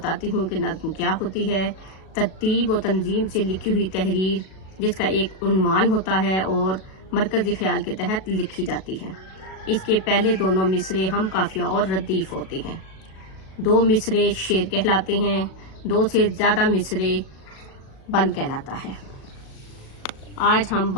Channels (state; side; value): late; right; 37 ms